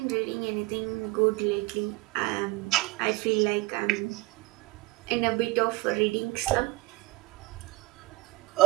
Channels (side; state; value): left; quieter; 21.4 dB